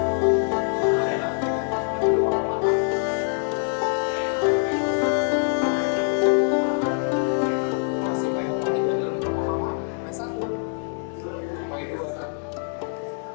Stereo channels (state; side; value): silent; right; 62 dB below the other